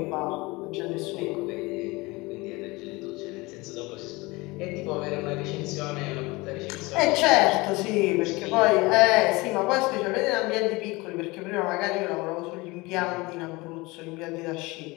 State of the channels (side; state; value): right; quieter; 23.3 dB